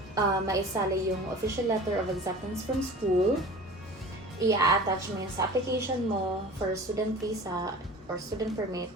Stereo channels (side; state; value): both; normal; correlation 0.40